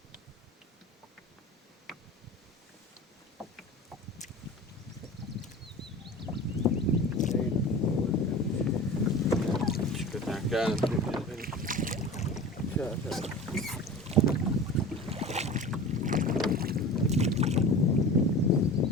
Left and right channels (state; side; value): normal; both; correlation 0.36